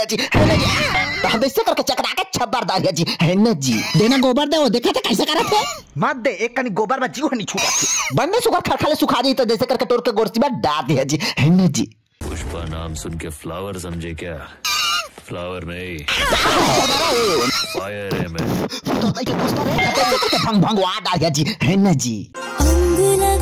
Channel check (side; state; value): both; identical; correlation 1.00